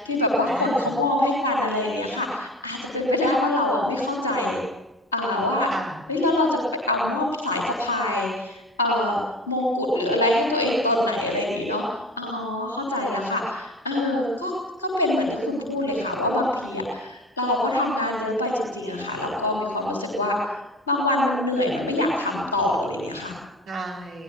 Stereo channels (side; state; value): both; normal; correlation 0.35